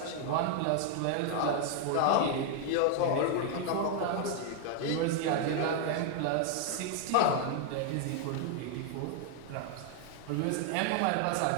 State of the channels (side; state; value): both; different; correlation 0.00